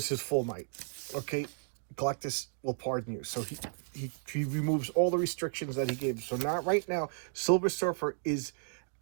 his full might. Okay, Galactus will pardon you. So he removes all the restrictions that he gave. So now, right now, Silver Surfer is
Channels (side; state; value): left; silent; digital silence